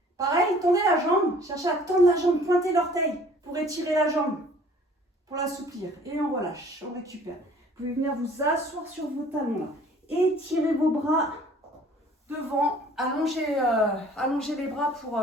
pareil, tendez la jambe, cherchez à tendre la jambe, pointez l'orteil pour étirer la jambe, pour l'assouplir. Et on relâche, on récupère. Vous pouvez venir vous asseoir sur vos talons là. Étirez vos bras devant, allongez les bras pour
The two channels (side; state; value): both; normal; correlation 0.53